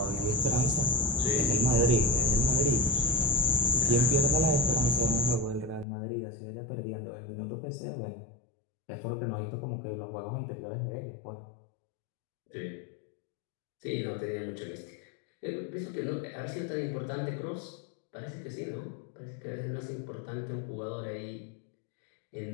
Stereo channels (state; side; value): drops out; right; at 5.9 s